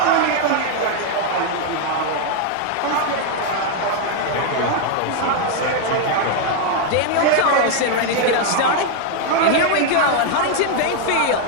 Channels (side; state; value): both; different; correlation 0.00